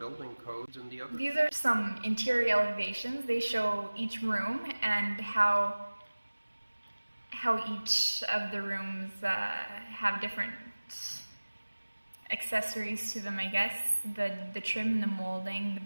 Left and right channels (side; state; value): both; inverted; correlation -1.00